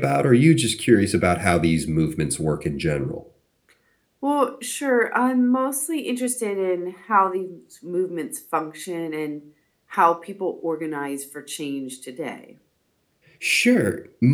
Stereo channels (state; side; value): identical; both; correlation 1.00